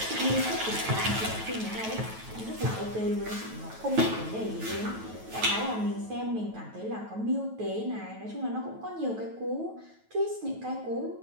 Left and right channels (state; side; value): late; left; 9.2 ms